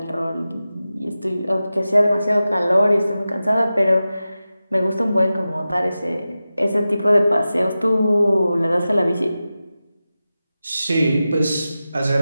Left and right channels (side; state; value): both; inverted; correlation -0.94